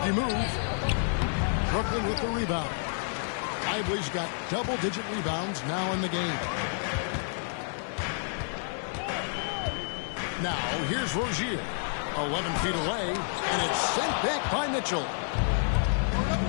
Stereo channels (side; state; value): right; silent; digital silence